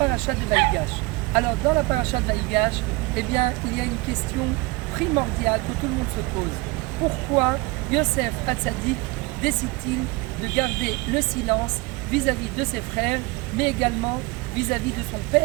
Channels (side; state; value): left; quieter; 23.5 dB